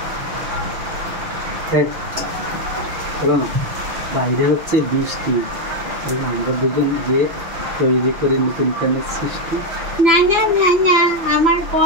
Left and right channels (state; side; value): late; left; 6.0 ms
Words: চলো না, বাইরে হচ্ছে বৃষ্টি, আমরা দুজন যে তৈরি করে নতুন প্যানের সৃষ্টি। না না না না, আমার